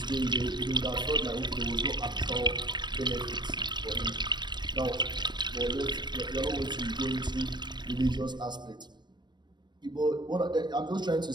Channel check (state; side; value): late; left; 0.22 ms